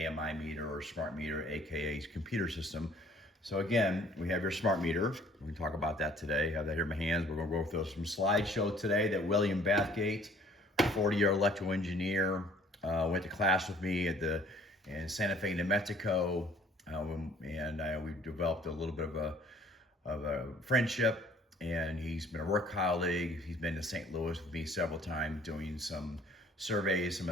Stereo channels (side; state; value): both; normal; correlation 0.57